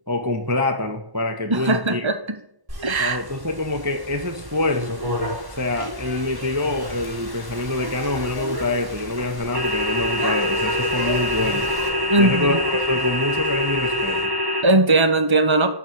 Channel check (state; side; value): late; left; 1.1 ms